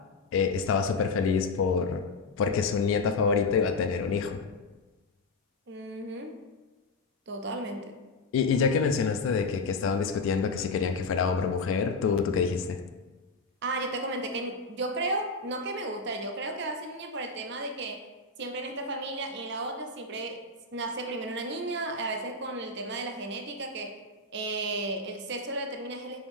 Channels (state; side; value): quieter; right; 3.5 dB